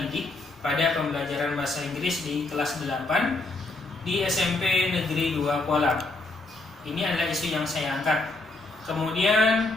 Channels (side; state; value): right; quieter; 3.0 dB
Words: pada pembelajaran bahasa Inggris di kelas 8 di SMP Negeri 2 Kuala. Ini adalah isu yang saya angkat.